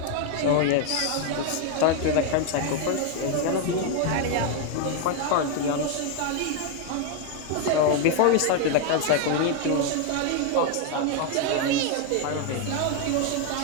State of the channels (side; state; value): both; different; correlation 0.01